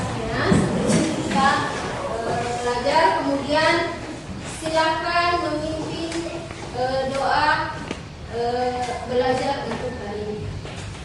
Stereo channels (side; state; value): both; identical; correlation 1.00